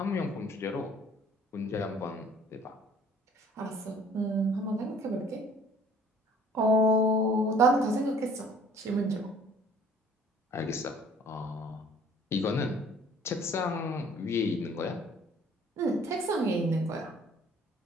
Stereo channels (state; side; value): normal; both; correlation 0.55